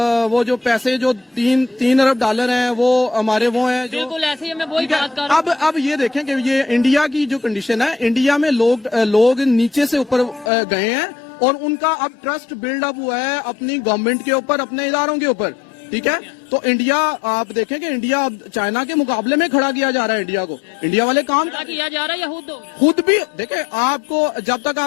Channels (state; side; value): drops out; right; at 10.5 s